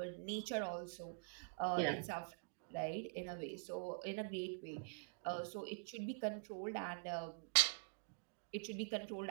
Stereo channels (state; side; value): silent; left; digital silence